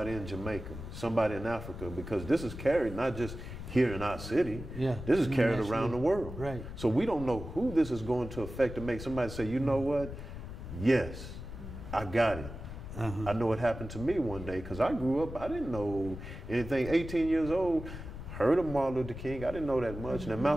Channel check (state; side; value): noise; left; rumble, 10 dB below the sound